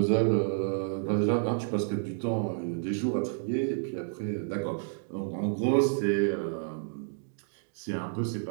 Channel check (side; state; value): left; silent; digital silence